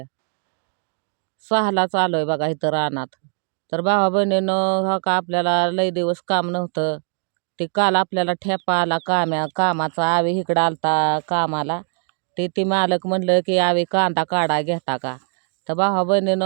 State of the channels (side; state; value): left; silent; 55 dB below the other